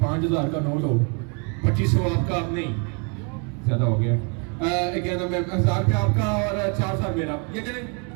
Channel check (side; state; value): left; quieter; 36.3 dB